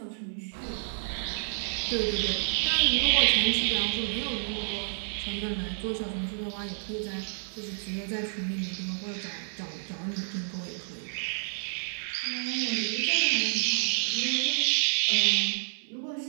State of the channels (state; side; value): silent; left; 58 dB below the other